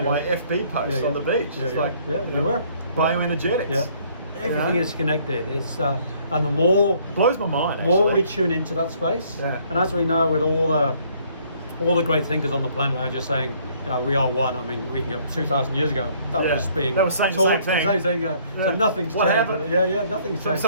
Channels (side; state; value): both; inverted; correlation -0.62